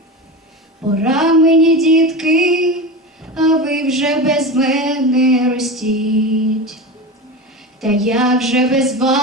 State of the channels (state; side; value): normal; both; correlation 0.25